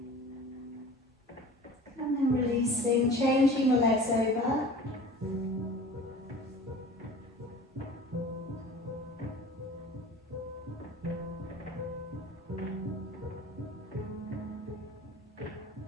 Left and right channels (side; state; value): both; normal; correlation 0.41